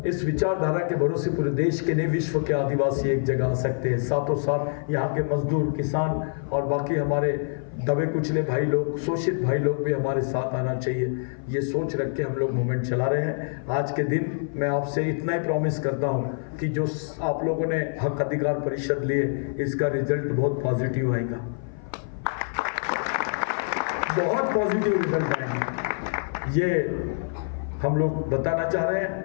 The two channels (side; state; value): right; silent; 56 dB below the other